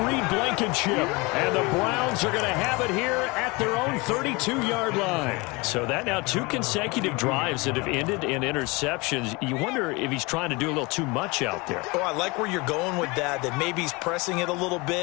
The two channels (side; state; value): right; quieter; 25.8 dB